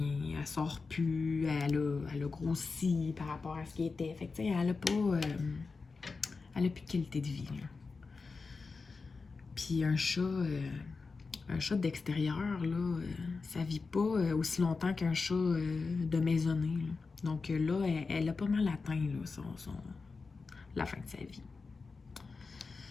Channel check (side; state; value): right; quieter; 4.4 dB